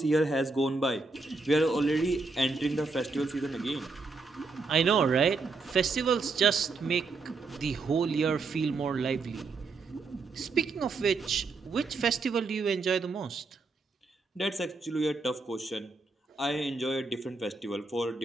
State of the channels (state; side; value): quieter; left; 3.9 dB